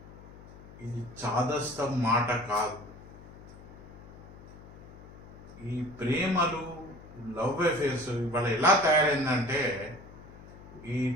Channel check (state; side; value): noise; left; hum, 18 dB below the sound